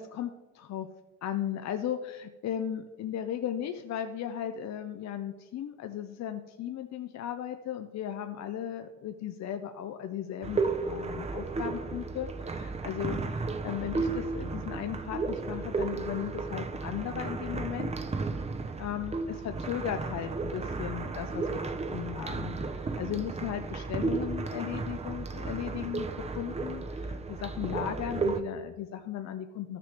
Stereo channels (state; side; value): normal; both; correlation 0.36